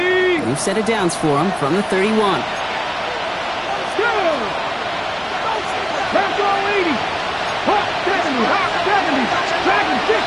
New set of downs for him from the 31. Back on 80. Hot 70. Hot 70. Dragon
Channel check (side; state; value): both; identical; correlation 1.00